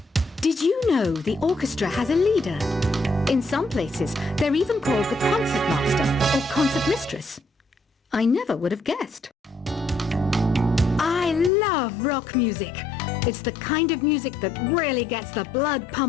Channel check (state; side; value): drops out; right; at 11.5 s